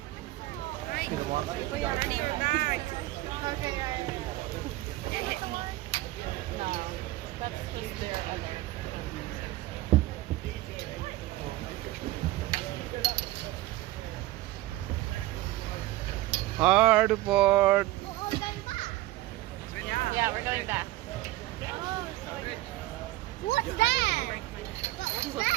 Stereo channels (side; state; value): left; quieter; 17.7 dB